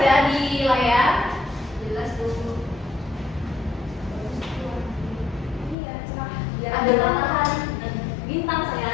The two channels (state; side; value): drops out; right; at 5.8 s